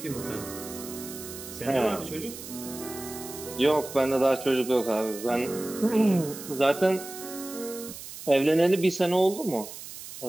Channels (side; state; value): right; noise; hiss, 12 dB below the sound